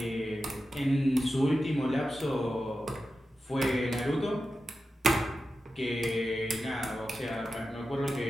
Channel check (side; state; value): both; normal; correlation 0.91